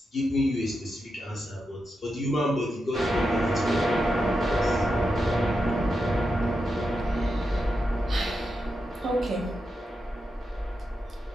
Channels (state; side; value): normal; both; correlation 0.87